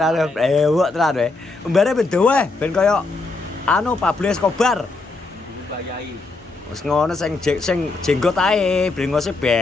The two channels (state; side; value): quieter; right; 3.5 dB